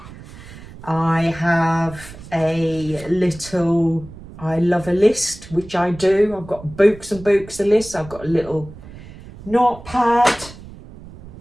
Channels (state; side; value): noise; right; rumble, 17 dB below the sound